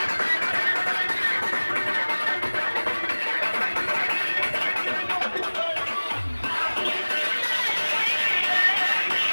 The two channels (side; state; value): both; inverted; correlation -1.00